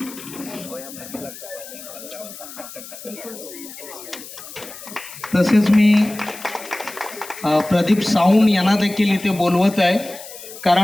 तसेच मी प्रदीप साऊंड यांना देखील इथे बोलवत आहे,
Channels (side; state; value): left; noise; hiss, 14 dB below the sound